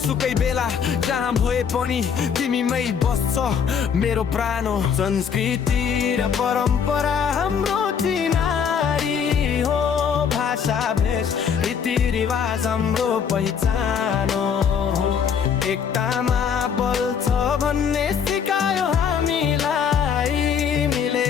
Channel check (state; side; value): quieter; right; 7.2 dB